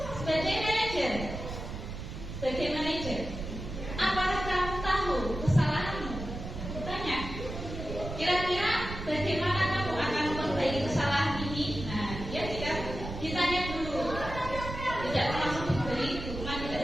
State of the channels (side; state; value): right; noise; rumble, 8 dB below the sound